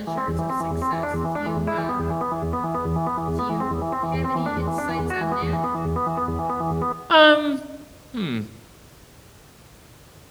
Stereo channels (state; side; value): identical; both; correlation 1.00